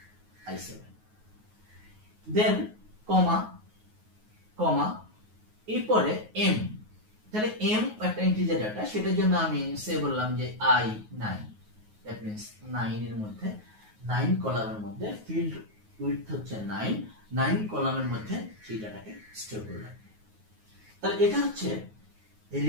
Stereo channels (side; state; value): left; late; 9.4 ms